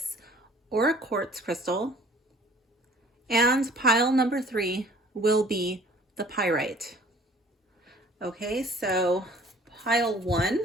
aura quartz crystal. And pile number 3 will be the pyrite. Okay, so pile 1,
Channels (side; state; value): both; normal; correlation 0.53